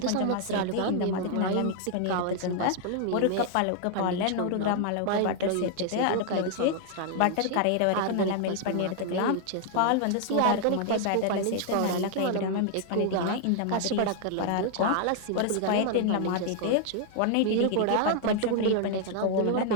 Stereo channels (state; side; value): different; both; correlation 0.00